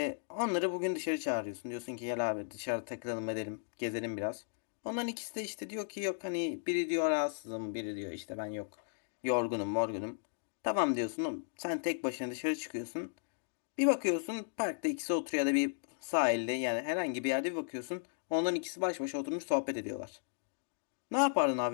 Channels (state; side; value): silent; right; digital silence